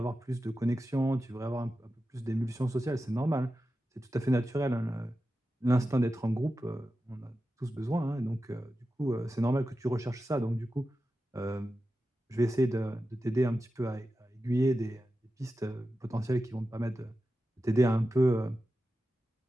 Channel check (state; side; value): normal; both; correlation 0.92